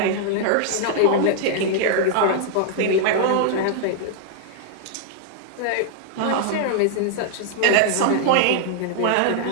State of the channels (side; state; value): both; different; correlation -0.01